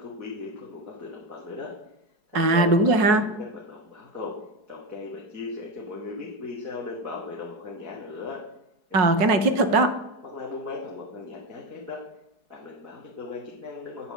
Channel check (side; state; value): left; late; 4.7 ms